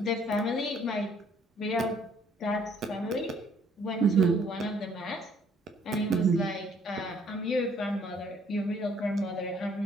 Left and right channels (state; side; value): normal; both; correlation 0.62